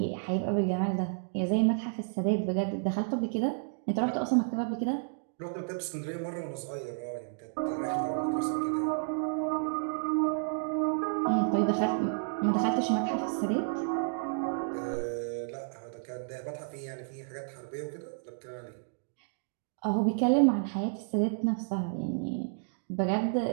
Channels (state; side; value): silent; left; digital silence